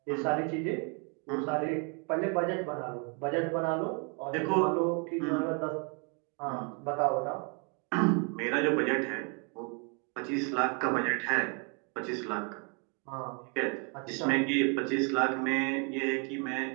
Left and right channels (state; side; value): quieter; left; 36.3 dB